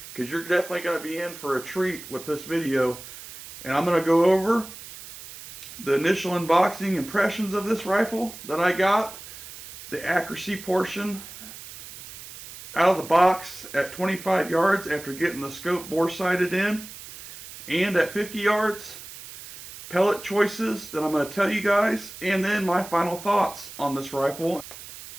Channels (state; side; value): noise; right; hiss, 14 dB below the sound